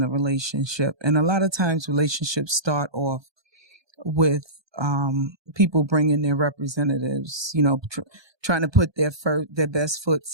relationship. And a lot of times relationships start off with people bringing their representatives, trying to put their best foot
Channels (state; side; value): late; left; 1.2 ms